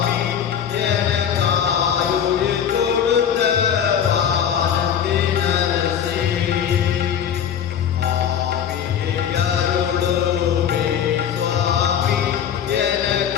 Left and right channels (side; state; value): right; quieter; 8.7 dB